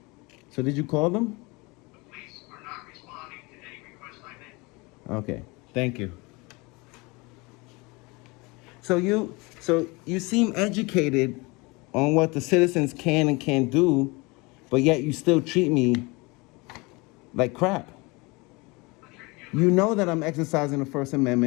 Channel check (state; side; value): quieter; right; 25.8 dB